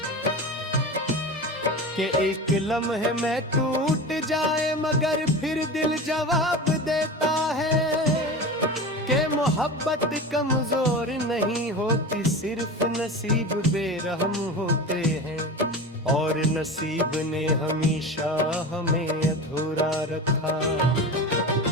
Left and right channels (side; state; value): both; normal; correlation 0.30